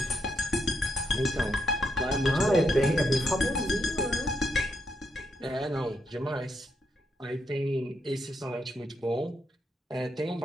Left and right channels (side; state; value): both; normal; correlation 0.80